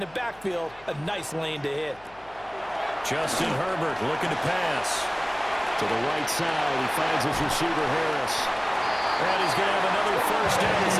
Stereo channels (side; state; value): left; noise; hum, 27 dB below the sound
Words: the backfield a nice lane to hit. Justin Herbert looking to pass. To the right side, he finds his receiver Harris. And he's going to have another first down as